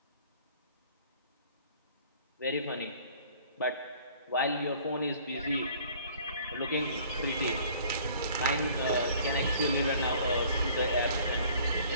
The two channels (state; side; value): inverted; both; correlation -0.53